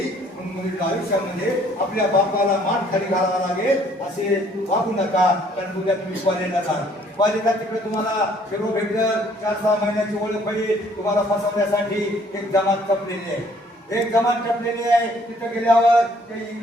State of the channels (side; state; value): both; normal; correlation 0.61